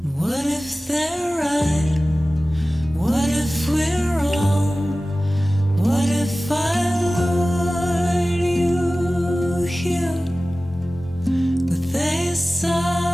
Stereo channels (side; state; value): both; normal; correlation 0.97